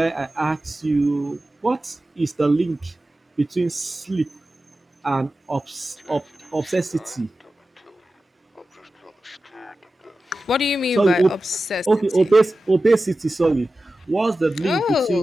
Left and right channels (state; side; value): normal; both; correlation 0.94